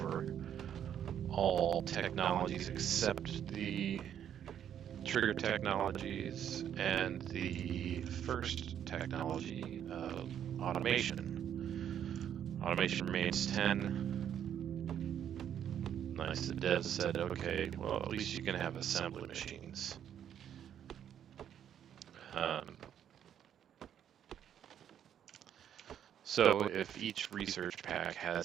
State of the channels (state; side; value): quieter; left; 9.6 dB